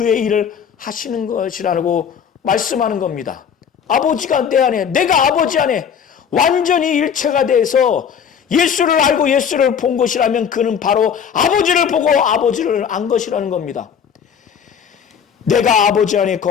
일을 하시는 것이라고 말씀하는 겁니다. 아버지가 내 안에, 내가 아버지 안에 완전히 일체가 돼서 예수를 알고 예수를 본 것이라면 그는 바로 아버지를 보고 아버지를 안 것이라는 겁니다. 내가 아버지 안에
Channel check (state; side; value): quieter; right; 7.6 dB